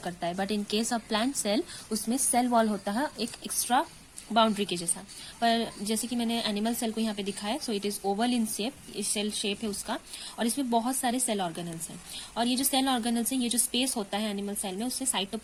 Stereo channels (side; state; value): both; identical; correlation 1.00